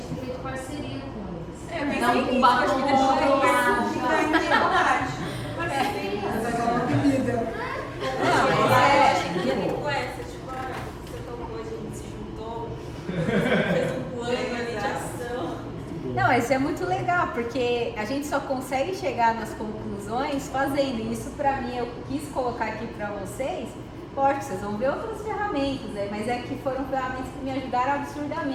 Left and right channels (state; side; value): identical; both; correlation 1.00